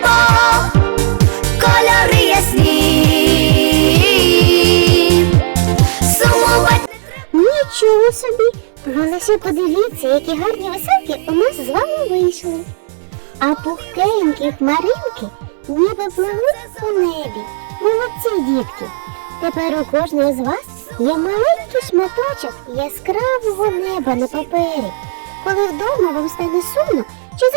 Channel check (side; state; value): left; silent; digital silence